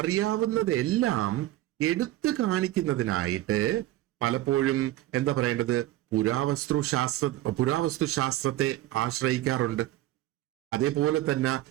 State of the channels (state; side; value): quieter; left; 15.4 dB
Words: എടുത്തു കാണിക്കുന്നതിനായിട്ട് പലപ്പോഴും എന്താ പറയേണ്ടത്, പുരാവസ്തു ശാസ്ത്രത്തെ ആശ്രയിക്കാറുണ്ട്. അതേപോലെ തന്നെ